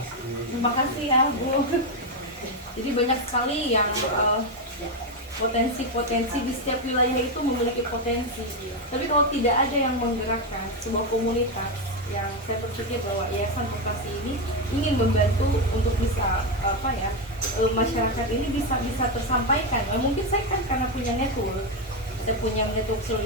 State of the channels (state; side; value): normal; both; correlation 0.07